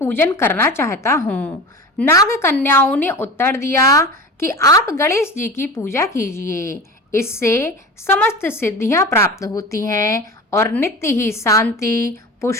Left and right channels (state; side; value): normal; both; correlation 0.33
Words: करना चाहता हूँ। नाग कन्याओं ने उत्तर दिया कि आप गणेश जी की पूजा कीजिए। इससे समस्त सिद्धियां प्राप्त होती हैं और नित्य ही शांति,